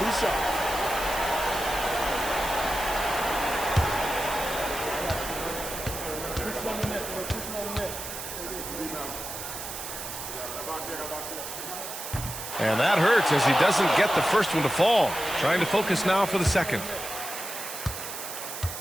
shots. And that hurts as he doesn't get the first one to fall. Trying to focus now for the second.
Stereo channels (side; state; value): right; noise; hiss, 8 dB below the sound